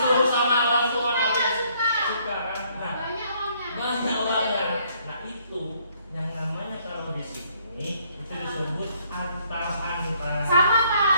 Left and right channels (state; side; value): inverted; both; correlation -0.66